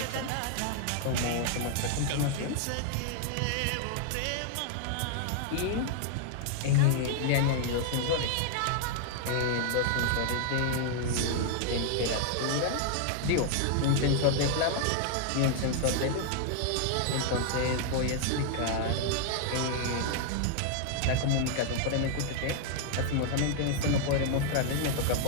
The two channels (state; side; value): different; both; correlation 0.00